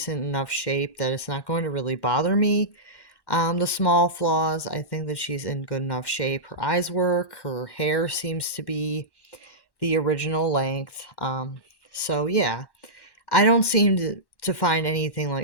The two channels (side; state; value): right; late; 1.1 ms